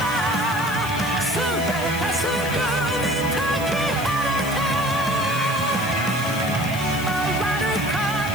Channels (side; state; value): left; noise; hiss, 14 dB below the sound